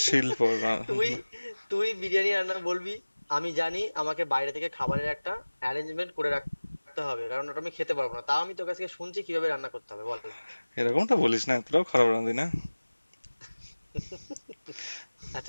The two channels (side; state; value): both; inverted; correlation -1.00